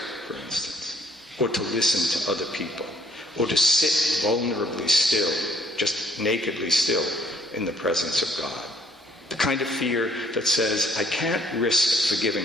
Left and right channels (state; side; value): normal; both; correlation 0.63